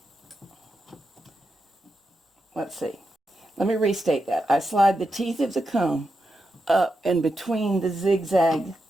Let's see. Let me restate that. I slide the teeth of the comb up and between the zigzag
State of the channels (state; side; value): normal; both; correlation 0.87